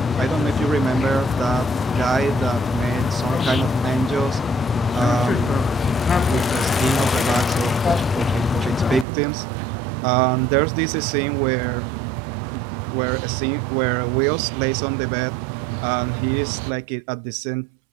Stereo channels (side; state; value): left; drops out; at 9.1 s